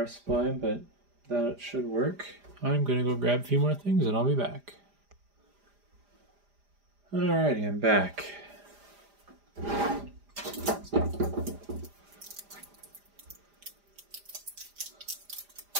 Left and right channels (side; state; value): left; late; 4.9 ms